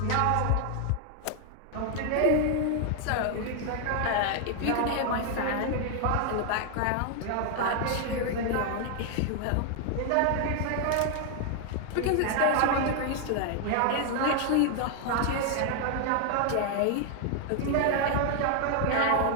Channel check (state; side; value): different; both; correlation 0.00